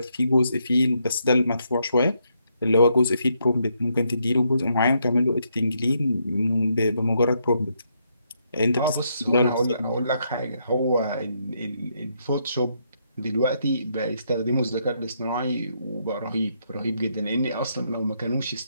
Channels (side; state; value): both; inverted; correlation -0.77